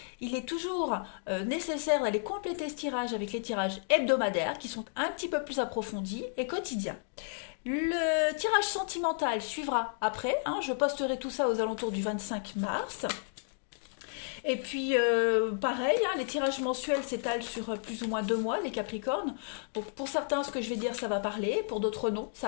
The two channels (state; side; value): silent; right; digital silence